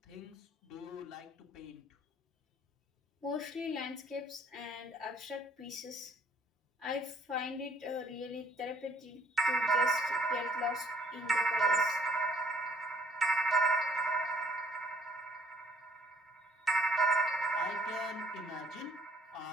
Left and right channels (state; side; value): normal; both; correlation 0.62